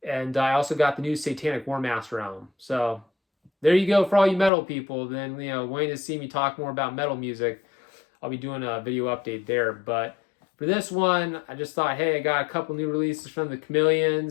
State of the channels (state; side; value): drops out; right; at 4.5 s